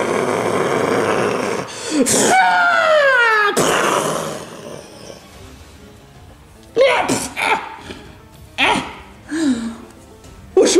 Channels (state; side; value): identical; both; correlation 1.00